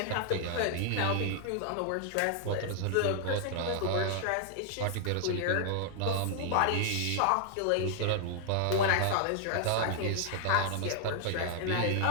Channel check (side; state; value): both; different; correlation 0.00